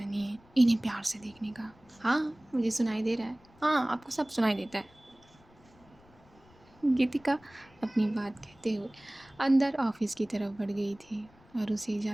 नहीं है इन्हें प्यार से देखने का। हाँ, मुझे सुनाई दे रहा है। हाँ, आपको सब सुनाई देता है। गीतिका अपनी बात कहते हुए अंदर ऑफिस की तरफ बढ़ गई थी और उसे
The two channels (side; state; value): left; noise; rumble, 27 dB below the sound